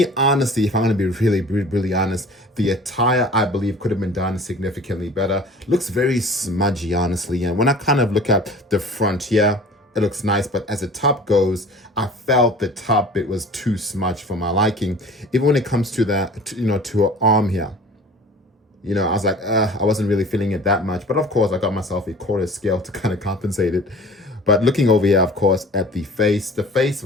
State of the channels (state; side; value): normal; both; correlation 0.44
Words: honestly, if I'm going to be really honest, the attire, I believe, could have been done significantly better. Looks very smudgy, honestly. And when I kind of look at the front here, it looks nice. But as the top goes, I felt the top bit was too smudged for my liking. Even when it comes to that, to her arm here. I was like, I wasn't really feeling it that much. But of course, I got myself a quarter scale to kind of compensate it. But looking over here, of course, at the face